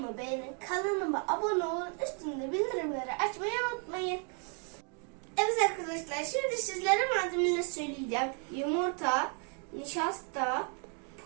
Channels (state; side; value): quieter; left; 39.3 dB